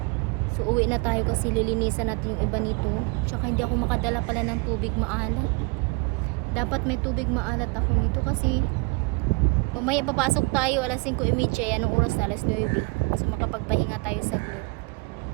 So uwi na tayo kasi lilinisan natin yung iba nito. Tsaka hindi ako makadala pala ng tubig maalat. Dapat may tubig maalat ako nito kasi mamaya papasok tayo alas 5:30, anong oras na? Alas 9. So makapagpahinga tayo saglit.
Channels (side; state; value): left; quieter; 29.2 dB